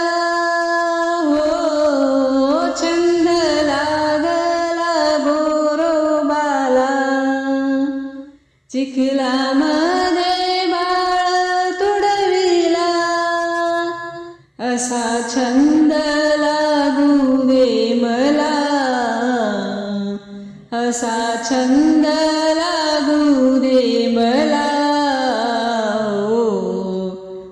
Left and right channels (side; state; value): both; identical; correlation 1.00